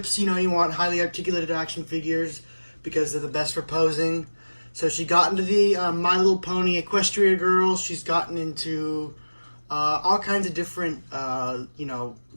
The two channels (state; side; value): inverted; both; correlation -1.00